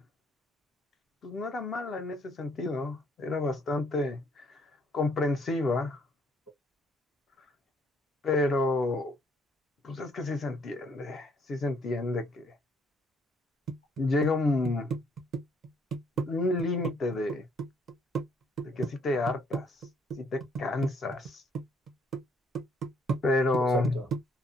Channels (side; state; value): both; normal; correlation 0.66